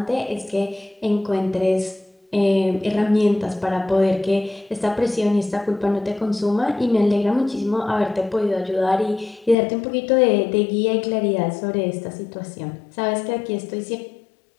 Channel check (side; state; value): right; drops out; at 9.6 s